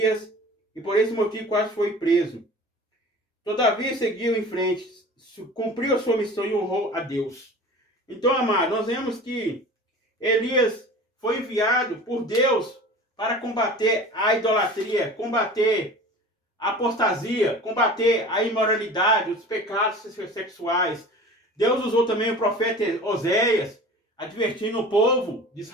e por esse motivo quase foi preso. Todavia seguiu em frente, cumpriu a sua missão e honrou a Deus. Então, amado, nós vemos que Elias foi enviado por Deus para combater a idolatria, combater a apostasia, combater a imoralidade, os pecados sexuais. Deus usou também o profeta Oséias, advertindo o povo de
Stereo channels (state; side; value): normal; both; correlation 0.39